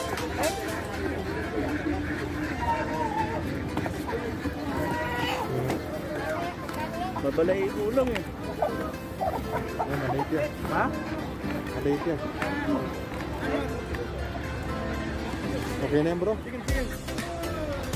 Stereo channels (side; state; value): both; identical; correlation 1.00